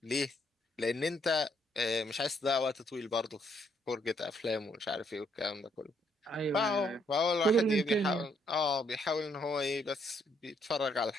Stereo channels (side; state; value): both; normal; correlation 0.71